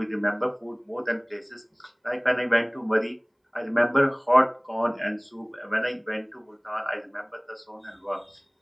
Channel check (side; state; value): both; identical; correlation 1.00